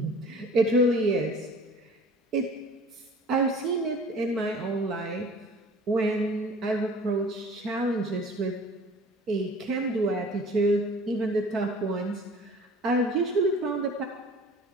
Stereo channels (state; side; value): normal; both; correlation 0.46